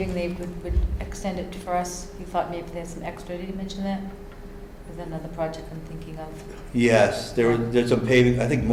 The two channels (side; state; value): both; identical; correlation 1.00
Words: they would extend it for us? He thought maybe there's some extra. Did he mention that? Is that another project I'm thinking of? Yes, there's some paving, I think